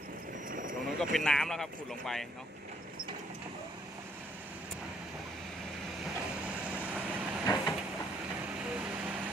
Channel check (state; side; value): normal; both; correlation 0.67